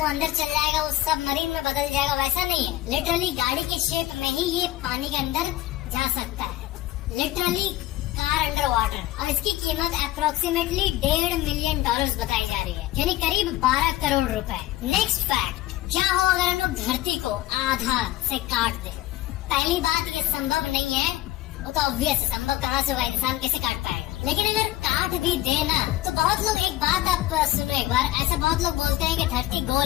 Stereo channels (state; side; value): quieter; right; 15.5 dB